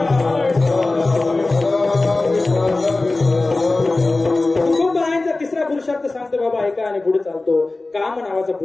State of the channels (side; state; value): right; quieter; 3.2 dB